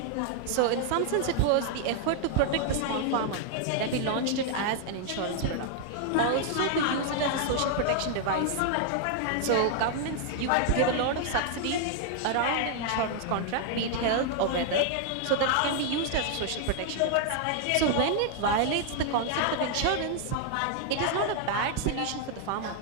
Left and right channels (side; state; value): both; different; correlation 0.00